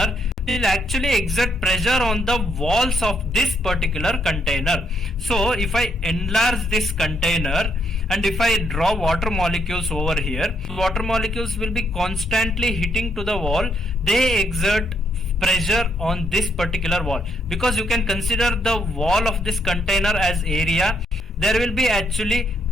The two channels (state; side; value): normal; both; correlation 0.74